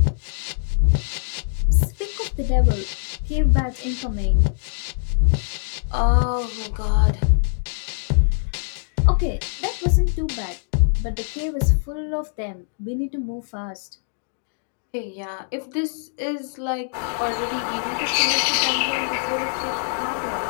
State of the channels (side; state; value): right; silent; digital silence